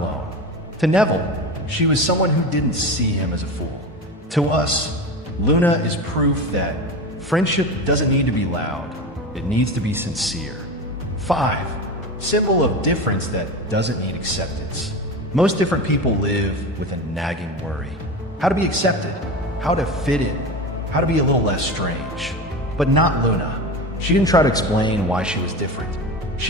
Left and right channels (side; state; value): both; normal; correlation 0.26